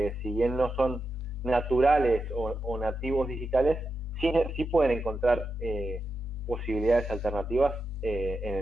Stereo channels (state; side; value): normal; both; correlation 0.88